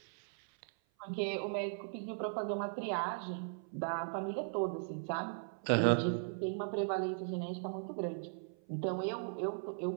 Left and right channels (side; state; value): left; silent; 52 dB below the other